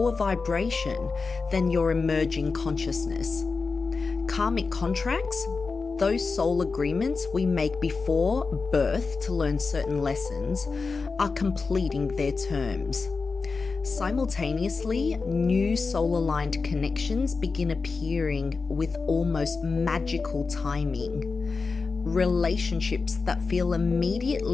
vibration than your emerging consciousness. Karmic contracts, those soul agreements we make before birth to learn certain lessons, are completing their terms. Simultaneously, new soul-aligned connections begin appearing with almost magical timing. Relationships that feel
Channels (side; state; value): right; quieter; 4.4 dB